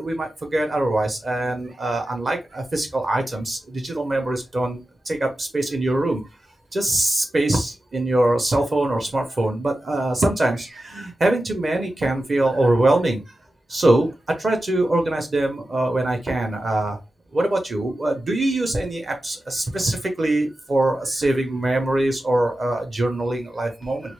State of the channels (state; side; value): normal; both; correlation 0.92